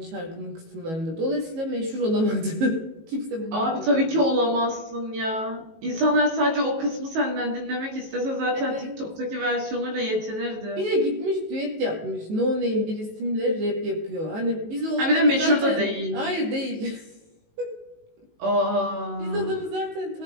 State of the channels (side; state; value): left; late; 19 ms